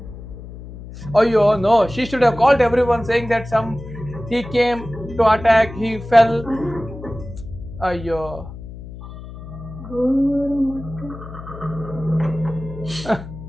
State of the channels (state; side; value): noise; left; hum, 13 dB below the sound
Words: Ayyo, no. She should have called everyone saying that he came to attack, he fell. Ayyo.